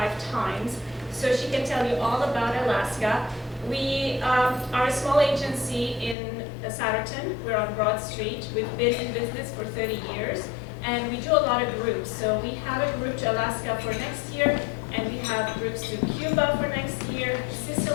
times, so she can tell you all about Alaska. We are a small agency in Satterton. We're on Broad Street. We've been in business for 30 years, and we do a lot of groups. So we have a group to Alaska for next year, and we have groups to Cuba for next year,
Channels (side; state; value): right; drops out; at 6.2 s